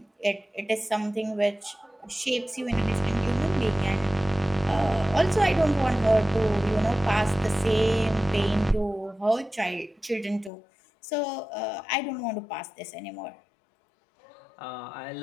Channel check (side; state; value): right; drops out; at 10.5 s